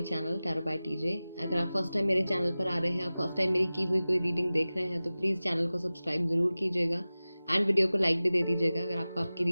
channel tarot by TJ. अगर आप first time मेरे channel पर आ रहे हैं, आप फर्स्ट टाइम मेरी की हुई कोई रीडिंग देख रहे हैं तो प्लीज़ चैनल को सब्सक्राइब ज़रूर कीजिएगा एंड वीडियो को लाइक भी दे दीजिएगा अगर आपको आपकी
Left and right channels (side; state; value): both; inverted; correlation -0.97